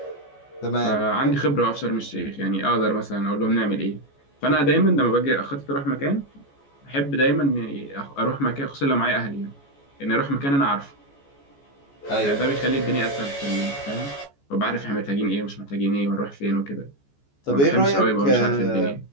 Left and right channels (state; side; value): late; right; 14 ms